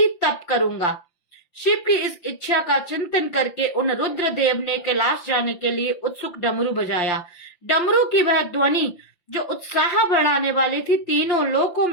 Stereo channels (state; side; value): late; right; 5.8 ms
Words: तप करूंगा। शिव की इस इच्छा का चिंतन करके उन रुद्र देव ने कैलाश जाने के लिए उत्सुक डमरू बजाया। डमरू की वह ध्वनि जो उत्साह बढ़ाने वाली थी तीनों लोकों